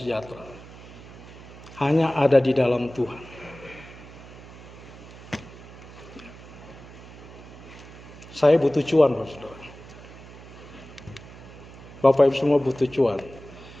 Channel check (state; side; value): noise; right; hum, 17 dB below the sound